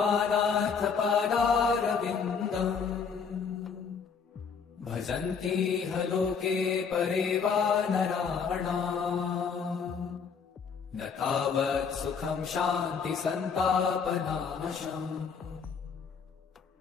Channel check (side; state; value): right; quieter; 6.0 dB